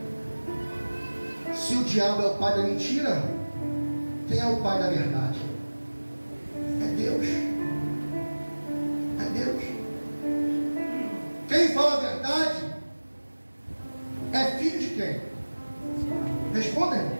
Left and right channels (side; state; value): both; inverted; correlation -1.00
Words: Se o diabo é o pai da mentira, quem é o pai da verdade? É Deus. É Deus. Quem fala a verdade é filho de quem? Respondem.